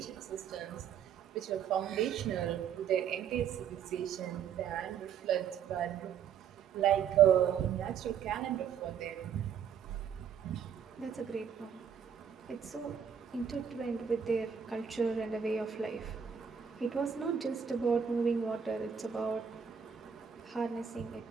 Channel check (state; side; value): quieter; left; 7.7 dB